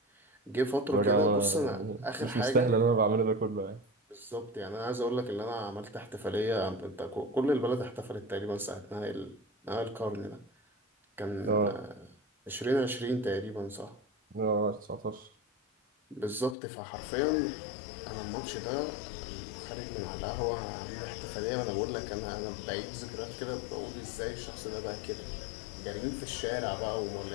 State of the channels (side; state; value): right; drops out; at 16.6 s